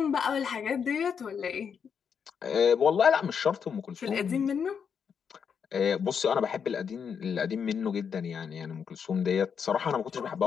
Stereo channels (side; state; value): right; quieter; 6.9 dB